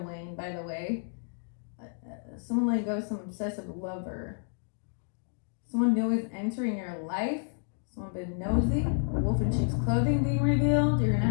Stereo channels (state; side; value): silent; right; digital silence